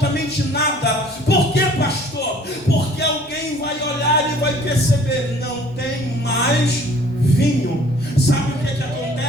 nada. Por quê, pastor? Porque alguém vai olhar e vai perceber: não tem mais vinho. Sabe o que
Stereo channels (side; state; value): both; normal; correlation 0.53